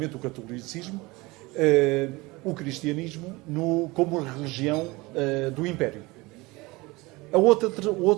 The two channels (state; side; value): quieter; left; 22.9 dB